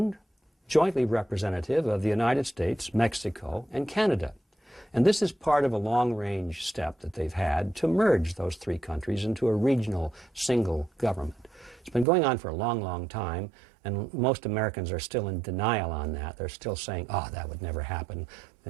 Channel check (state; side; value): drops out; left; at 12.1 s